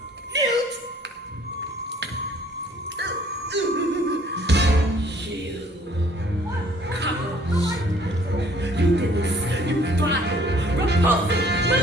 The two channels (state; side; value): normal; both; correlation 0.58